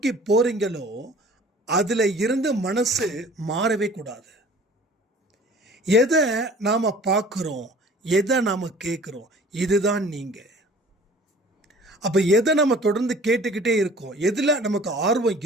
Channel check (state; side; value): normal; both; correlation 0.48